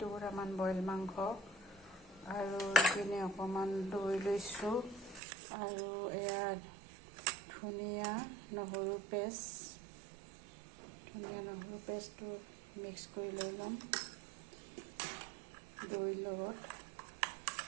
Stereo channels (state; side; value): drops out; left; at 5.2 s